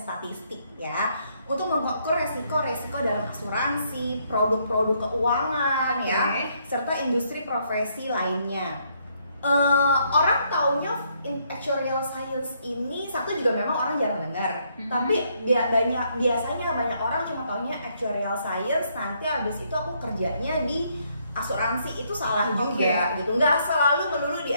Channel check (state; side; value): inverted; both; correlation -0.72